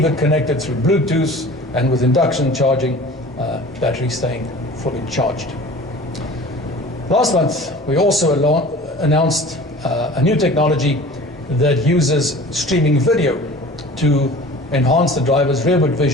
it connected through Bluetooth, and with induction charging, battery staying fully charged. Last month, we also announced a new technology that uses streaming video to enhance the driver's rearward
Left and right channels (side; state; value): both; normal; correlation 0.42